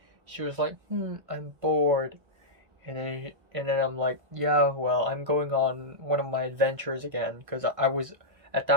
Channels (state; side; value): late; left; 1.6 ms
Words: She was like, I'm bored. And then I'm like, yeah, well, I'm going on one of my adventures again, because I was at